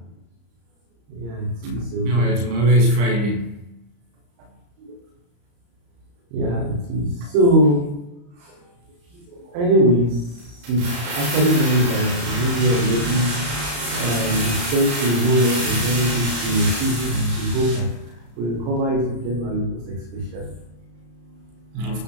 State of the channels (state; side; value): late; left; 34 ms